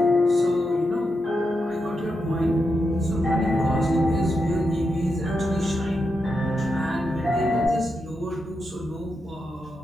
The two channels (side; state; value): both; normal; correlation 0.86